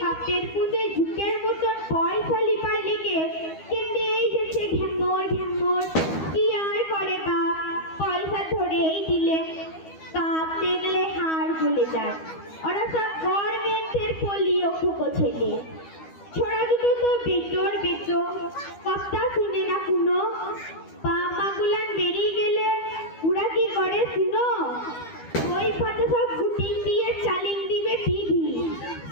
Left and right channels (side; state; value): right; late; 12 ms